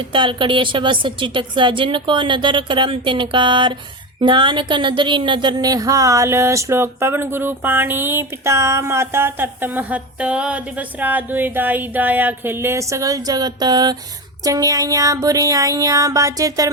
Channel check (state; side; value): normal; both; correlation 0.21